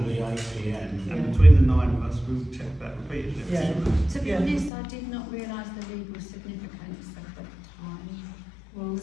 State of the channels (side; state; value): right; drops out; at 4.7 s